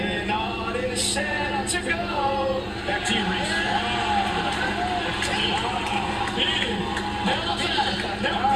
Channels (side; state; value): both; identical; correlation 1.00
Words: Ott is set to go. Back to you, Reese.